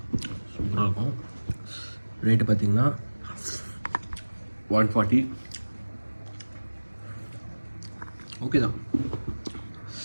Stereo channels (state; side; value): inverted; both; correlation -1.00